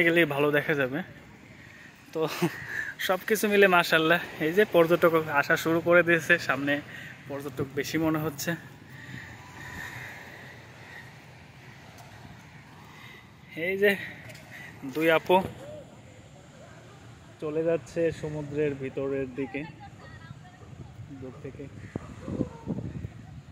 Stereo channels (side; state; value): both; identical; correlation 1.00